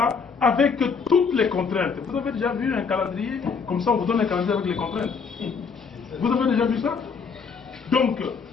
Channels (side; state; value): right; quieter; 5.5 dB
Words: avec toutes les contraintes. Vous avez déjà vu un calendrier? Comme ça, on vous donne un calendrier avec les contraintes. Vous avez déjà vu ça? Donc,